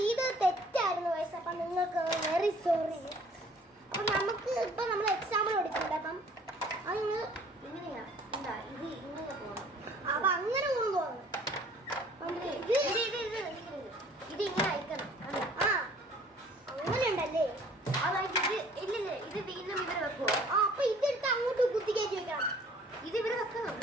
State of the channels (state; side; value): normal; both; correlation 0.54